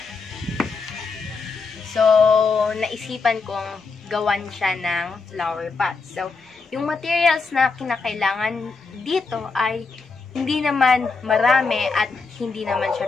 So, naisipan kong gawan siya ng flower pots. So, yung materials na kinakailangan dito ay hindi naman marami at hindi naman siya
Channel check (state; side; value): quieter; right; 4.4 dB